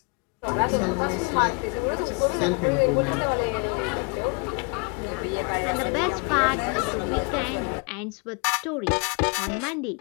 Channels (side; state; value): right; quieter; 35.3 dB